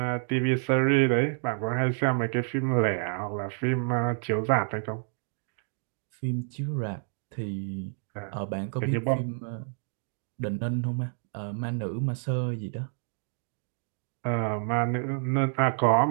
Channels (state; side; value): silent; left; 59 dB below the other